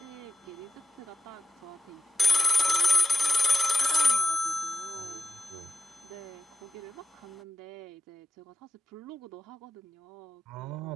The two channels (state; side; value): normal; both; correlation 0.79